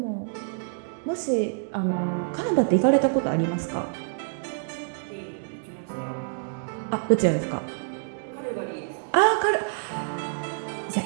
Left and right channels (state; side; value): silent; left; digital silence